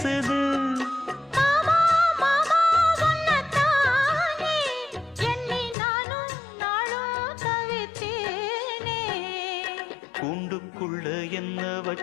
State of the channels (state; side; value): drops out; right; at 5.8 s